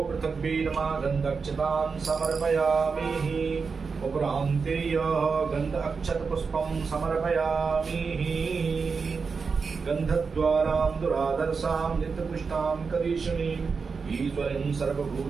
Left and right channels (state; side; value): quieter; left; 5.1 dB